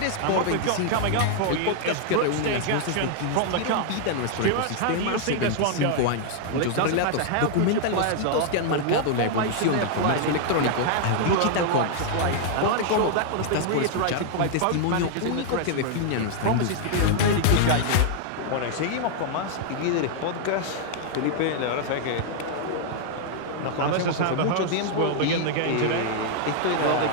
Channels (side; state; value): both; different; correlation 0.00